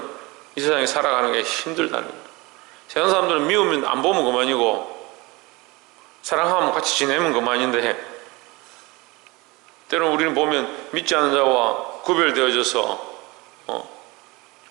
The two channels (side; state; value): left; quieter; 23.8 dB